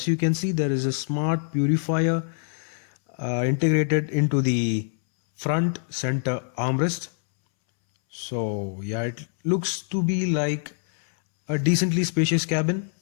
you can see, there is a smart purifier integrated into the front center armrest. So yeah, it looks to be like a decently spacious cabin.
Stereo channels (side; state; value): right; silent; 62 dB below the other